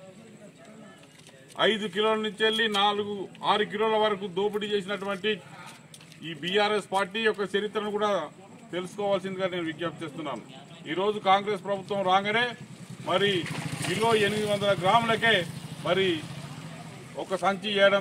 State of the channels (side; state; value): both; identical; correlation 1.00